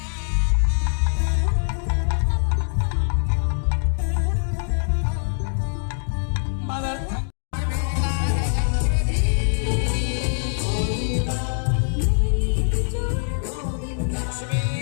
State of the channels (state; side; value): silent; right; digital silence